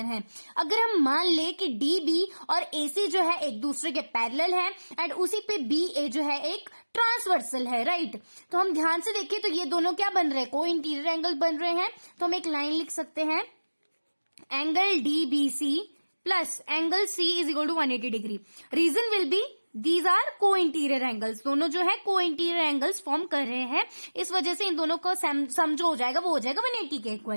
है. अगर हम मान ले कि डीबी और एसी जो है एक दूसरे के पैरेलल है एंड उसी पे बीए जो है एक ट्रांसवर्सल है, राइट. तो हम ध्यान से देखें तो ये दोनों क्या बन रहे हैं? को इंटीरियर एंगल बन रहे हैं. तो हम एक लाइन लिख सकते हैं, angle DBC plus angle C is equal to 180 degree. Reason will be these are co interior angles. दोनों जो है को इंटीरियर एंगल्स फॉर्म कर रहे हैं, इस वजह से इन दोनों का सम जो हो जाएगा वो हो जाएगा 180 के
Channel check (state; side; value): inverted; both; correlation -1.00